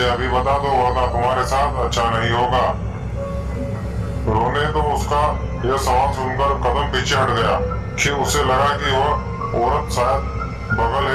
अभी बता दो वरना तुम्हारे साथ अच्छा नहीं होगा। रोने तो उसका यह सवाल सुनकर कदम पीछे हट गया कि उसे लगा कि वह औरत शायद बगल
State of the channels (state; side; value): identical; both; correlation 1.00